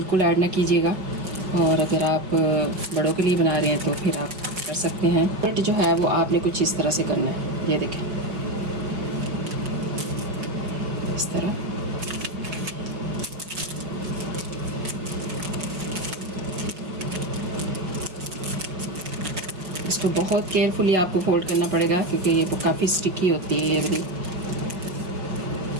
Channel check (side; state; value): left; late; 5.4 ms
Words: ऐड ना कीजिएगा और अगर आप बड़ों के लिए बना रहे हैं तो फिर आप कर सकते हैं। बट जो है वो आपने कुछ इस तरह से करना है। ये देखें इस तरह। इसको बहुत केयरफुली आपको फोल्ड करना पड़ेगा क्योंकि ये काफ़ी स्टिकी होती है ये वाली।